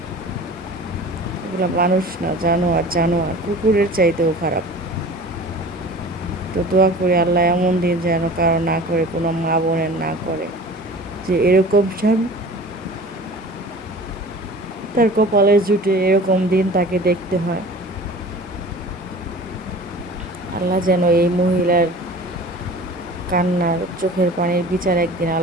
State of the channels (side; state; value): both; normal; correlation 0.41